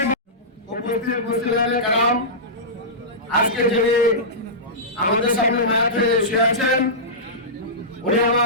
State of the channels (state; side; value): normal; both; correlation -0.17